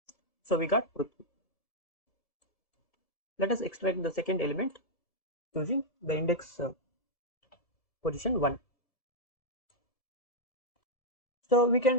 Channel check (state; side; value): late; right; 1.7 ms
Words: So we got Prithvi. Let us extract the second element using the index position 1. So we